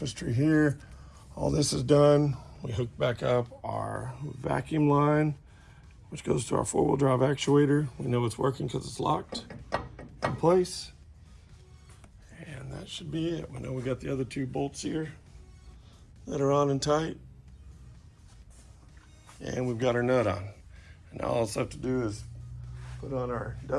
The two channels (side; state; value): both; identical; correlation 1.00